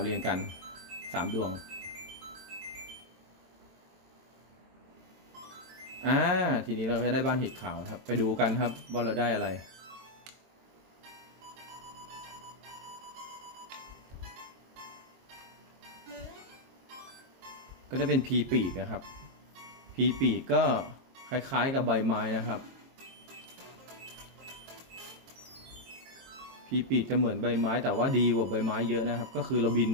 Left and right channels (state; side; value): late; left; 23 ms